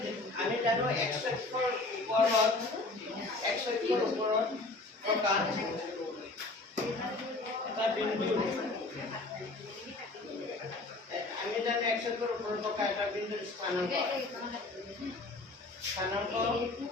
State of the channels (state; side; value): quieter; right; 3.1 dB